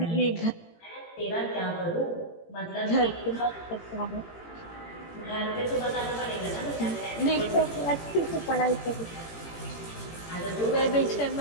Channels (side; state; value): right; late; 18 ms